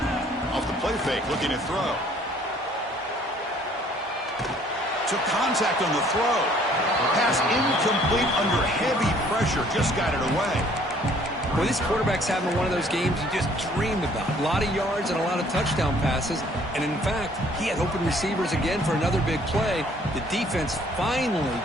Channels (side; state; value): both; normal; correlation 0.59